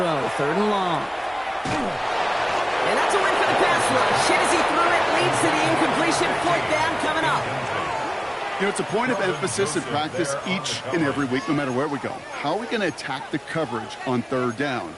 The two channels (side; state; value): both; identical; correlation 1.00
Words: third and long. And that's a win for the pass rush. Hit as he threw it, leads to the incompletion. Fourth down coming up. You know, it's a point of emphasis in practice each and every week, no matter where we go. How are we going to attack the coverage on third down?